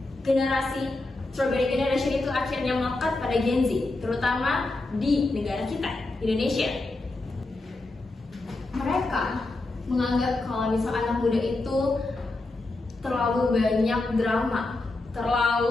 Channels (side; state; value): right; quieter; 3.0 dB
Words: generasi Strawberry Generation itu akhirnya melekat pada Gen Z, terutama di negara kita, Indonesia. Mereka menganggap kalau misal anak muda itu terlalu banyak drama,